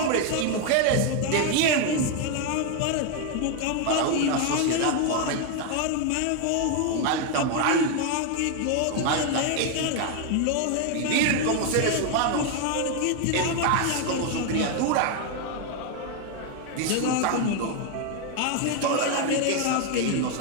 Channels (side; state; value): both; different; correlation 0.01